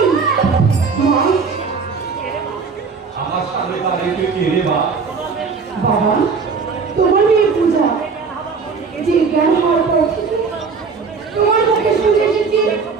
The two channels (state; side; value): quieter; left; 5.1 dB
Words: মা আমার সামনে দাঁড়িয়ে কে রে মা? বাবা তোমার মেয়ে পূজা, যে জ্ঞান হওয়ার পর থেকে তোমার মুখে শুনে এসেছি